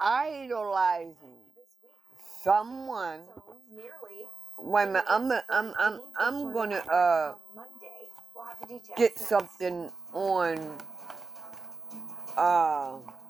someone. Wait a minute, I'm gonna get something on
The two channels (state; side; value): quieter; left; 4.2 dB